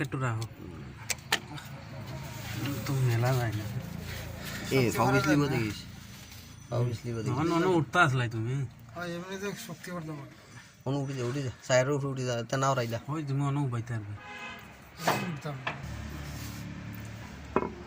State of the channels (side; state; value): both; identical; correlation 1.00